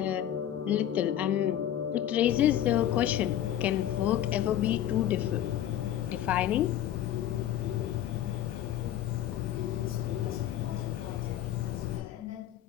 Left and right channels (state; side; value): quieter; right; 11.5 dB